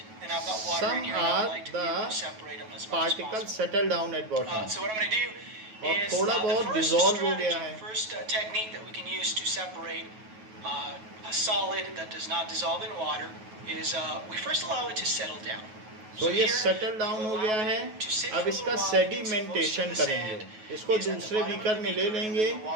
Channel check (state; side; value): late; left; 9.3 ms